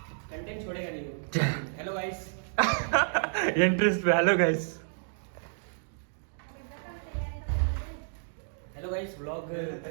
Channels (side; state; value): left; silent; digital silence